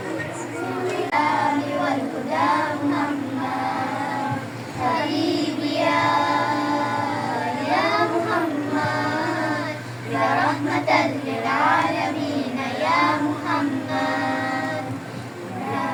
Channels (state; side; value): identical; both; correlation 1.00